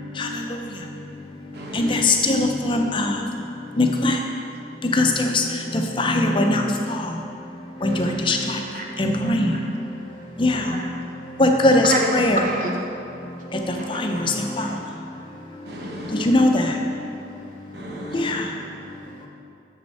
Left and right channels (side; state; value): both; normal; correlation 0.52